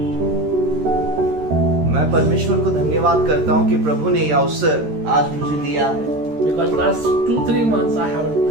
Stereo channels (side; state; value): left; late; 13 ms